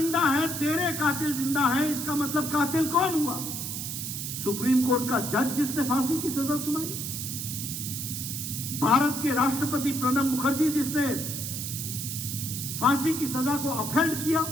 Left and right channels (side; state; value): right; noise; hiss, 5 dB below the sound